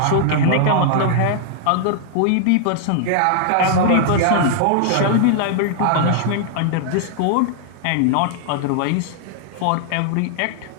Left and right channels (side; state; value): both; different; correlation -0.01